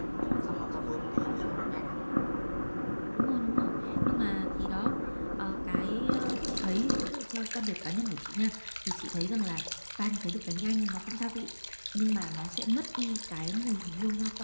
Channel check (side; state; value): both; inverted; correlation -1.00